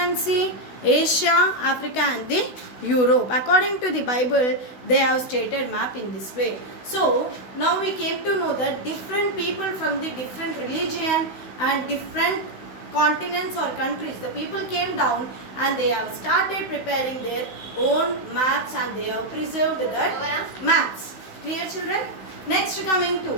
see Asia, Africa and the Europe. According to the Bible, they have stated map in this way. So now we came to know that different people from the different religion and different continents or countries, the people came down and they have started preparing their own maps and they have preserved that maps. Clear, children? Next coming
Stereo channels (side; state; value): right; late; 16 ms